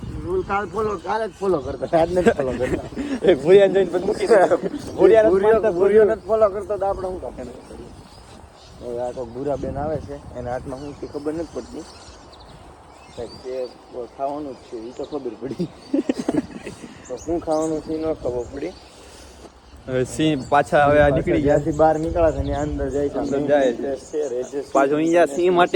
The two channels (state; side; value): identical; both; correlation 1.00